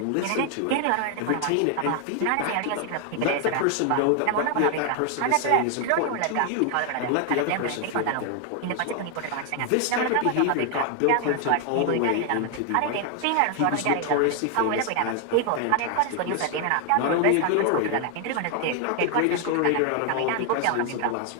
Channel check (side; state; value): both; different; correlation 0.00